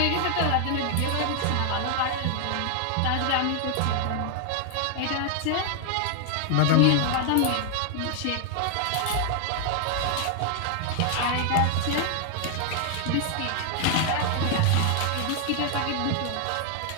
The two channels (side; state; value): both; different; correlation 0.00